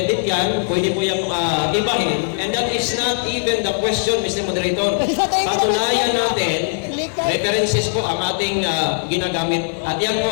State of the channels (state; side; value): silent; right; digital silence